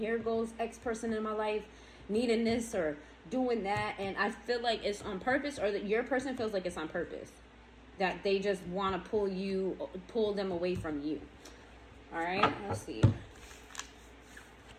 goes X person in my life needing this, or doing that, and I feel like it's on purpose, or that your person feels like it's on purpose, that they just want to pull them away from you. All right, let's see.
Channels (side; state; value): both; identical; correlation 1.00